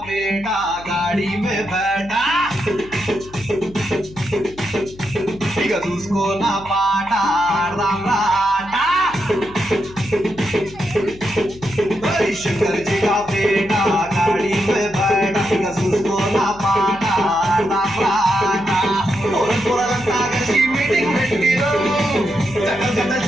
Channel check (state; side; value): noise; left; hum, 19 dB below the sound